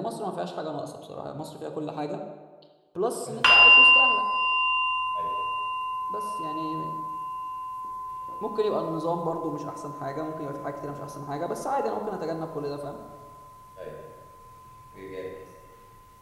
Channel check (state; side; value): identical; both; correlation 1.00